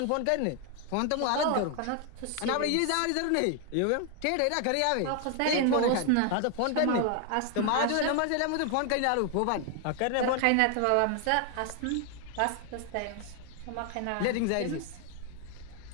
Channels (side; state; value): both; different; correlation 0.00